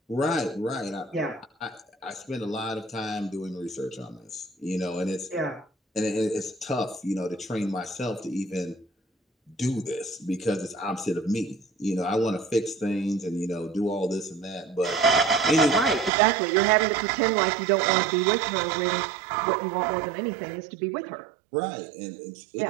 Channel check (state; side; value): drops out; left; at 16.1 s